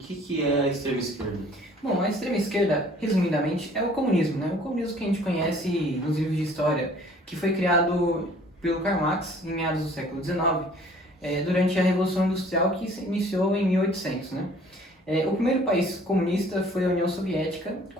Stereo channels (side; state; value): both; normal; correlation 0.54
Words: é a extrema esquerda. Bom, a extrema esquerda, resumidamente, é o comunismo, né? O comunismo que a gente conhece nos livros de história, que foi criado pelo Karl Marx em meados do século XIX, durante a Revolução Industrial que se iniciou em 1800, né? O primeiro país comunista foi a União Soviética,